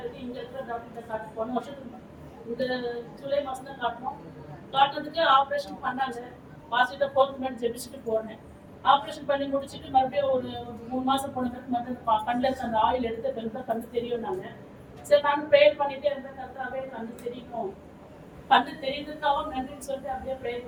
இங்க இருக்கிற டாக்டர்கிட்ட காட்டு, போன வருஷத்துக்கு இந்த ஜூலை மாசம் தான் காட்டணும். காட்டுறதுக்கு ஆப்ரேஷன் பண்ணாங்க. பாசிட்டிவா போகணும்னு ஜெபிச்சுட்டு போனேன். ஆப்ரேஷன் பண்ணி முடிச்சுட்டு மறுபடியும் ஒரு 3 மாசம் போன பிறகு மறுபடியும் கண்ணில் இருக்க அந்த ஆயில் எடுத்து பிறகு கண்ணு தெரியும். நாங்க சரி நானும் ப்ரேயர் பண்ணிட்டே இருந்தேன். கர்த்தாவே கண்ணு தெரியணும், கண்ணு தெரியுதுக்காகவும் நன்றின்னு சொல்லிட்டு அப்படியே ப்ரேயர்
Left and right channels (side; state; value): both; identical; correlation 1.00